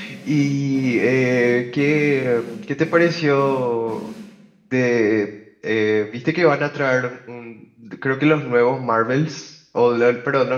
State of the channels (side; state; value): both; identical; correlation 1.00